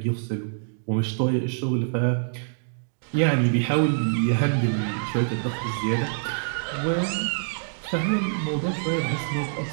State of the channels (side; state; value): left; silent; digital silence